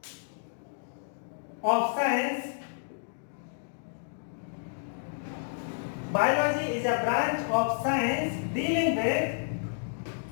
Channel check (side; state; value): right; silent; digital silence